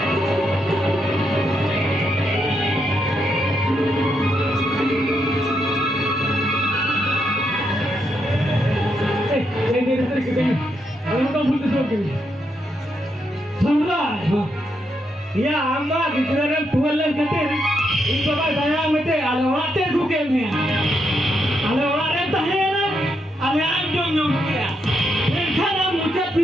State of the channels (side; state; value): both; normal; correlation 0.80